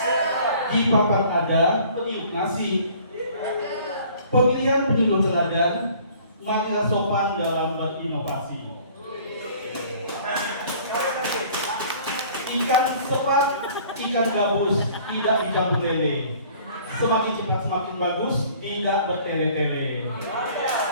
Di papan ada peniup nasi. Pemilihan penyuluh teladan, maka sopan dalam berinovasi. Ikan sepat, ikan gabus, tidak dicampur lele. Semakin cepat semakin bagus, tidak bertele-tele.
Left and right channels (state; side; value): inverted; both; correlation -0.53